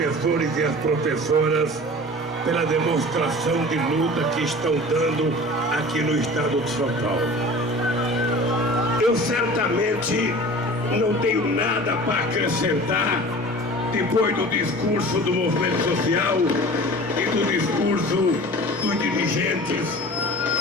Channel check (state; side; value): normal; both; correlation 0.40